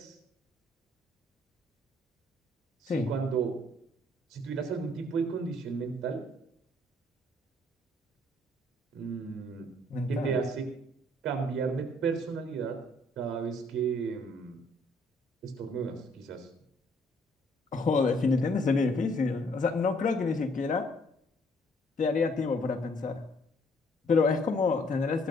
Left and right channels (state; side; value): normal; both; correlation 0.64